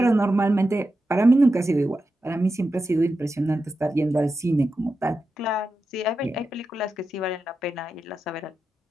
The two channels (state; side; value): normal; both; correlation 0.90